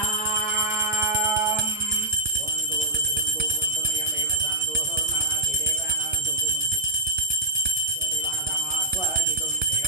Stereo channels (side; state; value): both; normal; correlation -0.01